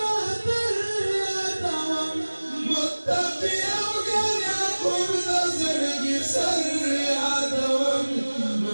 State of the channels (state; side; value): inverted; both; correlation -1.00